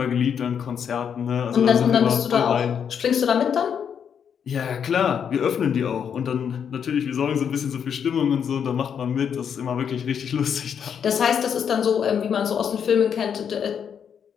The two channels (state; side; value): quieter; right; 7.7 dB